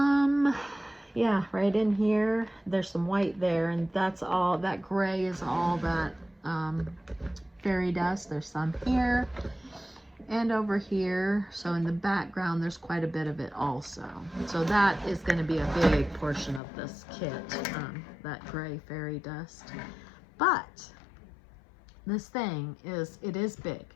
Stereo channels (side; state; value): right; drops out; at 16.6 s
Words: yeah, right in here, there's some white there. And that's all, that gray is all that fairy dust. There's some here. and over here. So in the background, there's quite a bit of it also. So that is going to be a big portion of this kit, that gray fairy dust. But this thing it is big,